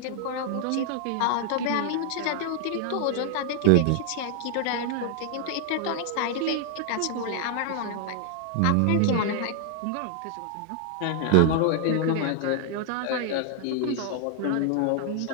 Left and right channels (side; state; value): both; different; correlation 0.00